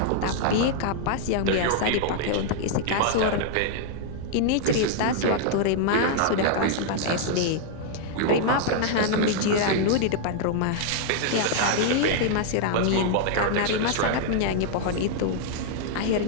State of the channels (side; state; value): both; different; correlation -0.01